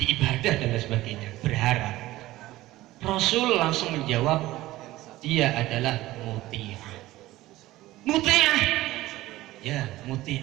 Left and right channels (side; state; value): left; quieter; 16.9 dB